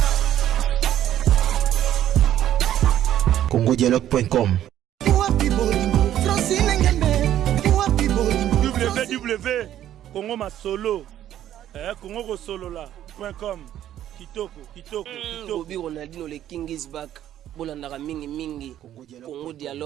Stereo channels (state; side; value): quieter; left; 11.7 dB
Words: congodialogue.com. www.congomasolo congokosolola.com. kitoko Bobby Ronaldinho le King is back. Bolandaka mingi Congo